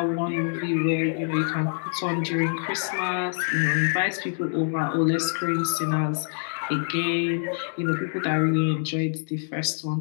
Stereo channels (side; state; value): right; silent; digital silence